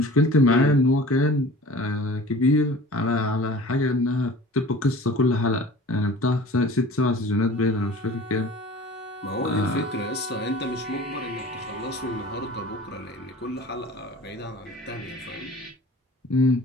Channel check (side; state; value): both; normal; correlation 0.42